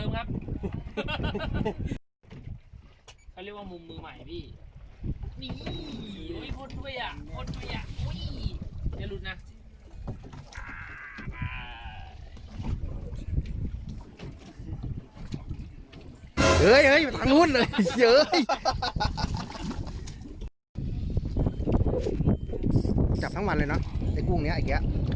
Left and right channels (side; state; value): both; identical; correlation 1.00